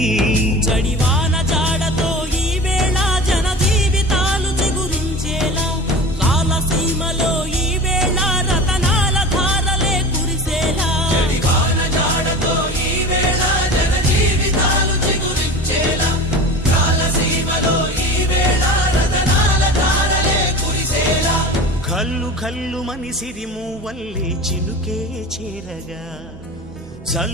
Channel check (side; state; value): both; normal; correlation 0.34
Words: చడివాన జాడతో ఈ వేళ జన జీవితాలు చిగురించేలా రాలసీమలో ఈ వేళ రతనాల ధారలే కురిసేలా చడివాన జాడతో ఈ వేళ జన జీవితాలు చిగురించేలా రాలసీమలో ఈ వేళ రతనాల ధారలే కురిసేలా కల్లు కల్లు మని సిరిమూవల్లే చినుకే చేరగా